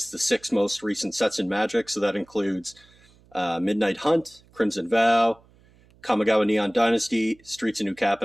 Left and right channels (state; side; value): noise; right; hum, 29 dB below the sound